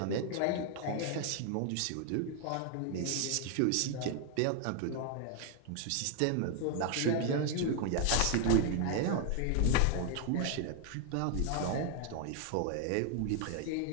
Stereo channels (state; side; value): different; both; correlation 0.00